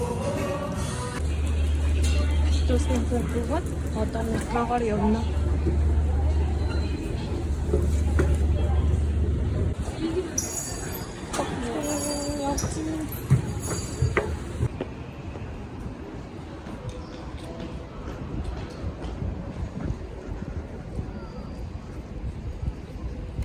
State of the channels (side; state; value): both; identical; correlation 1.00